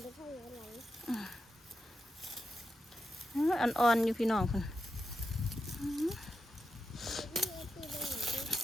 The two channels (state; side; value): normal; both; correlation 0.87